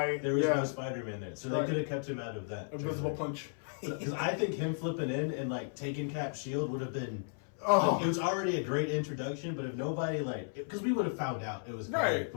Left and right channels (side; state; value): right; silent; 55 dB below the other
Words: There was no Spider-Man there, so they could have kept him out of that. Invisible punch. Because I think him flipping in and taking Cap's shield would have been. Oh. It was already a great introduction, but if nobody because we would have found out it was Right,